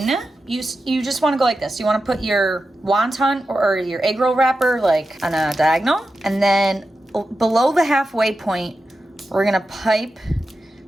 you just want to go like this. You want to put your wonton or your eggroll wrapper like on a diagonal, and then below the halfway point, we're gonna pipe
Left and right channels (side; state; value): both; normal; correlation 0.91